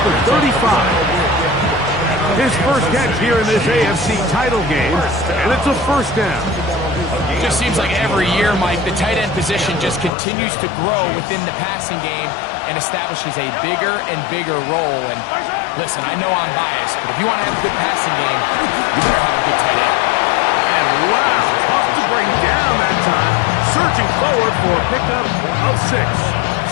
the 35. His first catch here in this AFC title game, and it's a 1st down. Just seems like every year, Mike, the tight end position just continues to grow within the passing game and establishes a bigger and bigger role. And listen, I know I'm biased, but if you want to have a good passing game, you better have a good tight end. And wow, tough to bring down that time. Searching forward for a pickup of 6.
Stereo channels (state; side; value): drops out; right; at 10.1 s